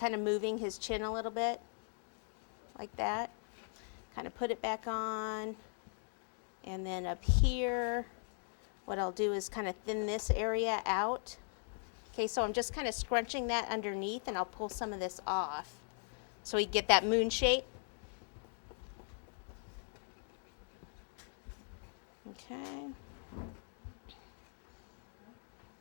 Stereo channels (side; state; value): right; silent; 52 dB below the other